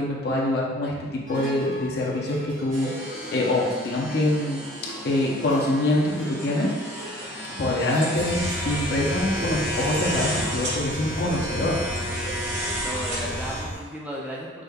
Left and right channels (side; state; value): both; normal; correlation 0.50